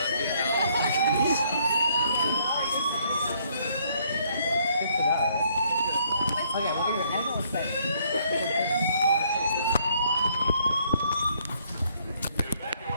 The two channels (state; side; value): inverted; both; correlation -0.67